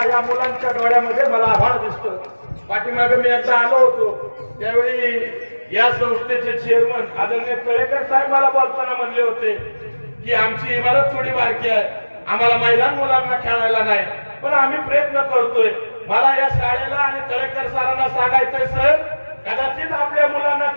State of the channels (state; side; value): inverted; both; correlation -1.00